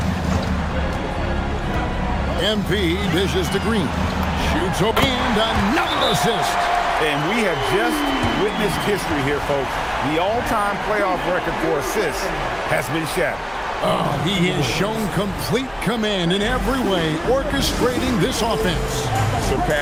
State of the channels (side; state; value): both; identical; correlation 1.00